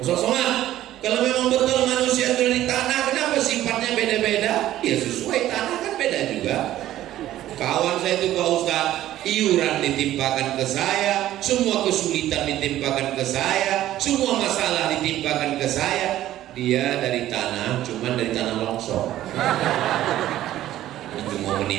Kosong-kosongan. Kalau memang betul manusia itu dari tanah, kenapa sifatnya beda-beda? Ya sesuai tanah kan beda juga. Kawan saya itu Pak Ustaz, iuran ditimpakan ke saya, semua kesulitan ditimpakan ke saya, semua masalah ditimpakan ke saya. Dia dari tanah, cuman dari tanah longsor. Itu mau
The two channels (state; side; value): quieter; left; 13.5 dB